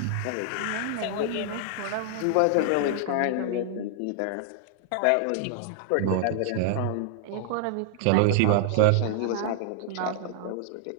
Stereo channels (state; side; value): different; both; correlation 0.00